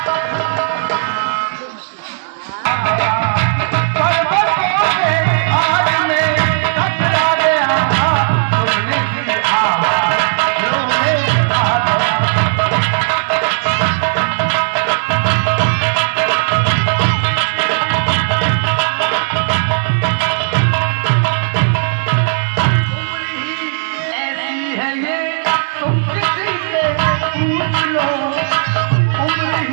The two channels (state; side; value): silent; left; digital silence